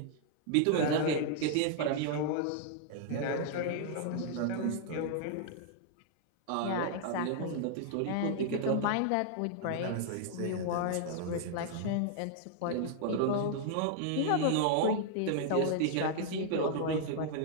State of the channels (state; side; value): different; both; correlation -0.01